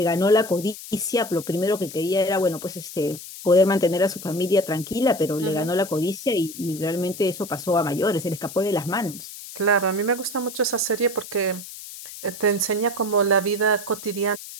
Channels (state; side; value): noise; left; hiss, 13 dB below the sound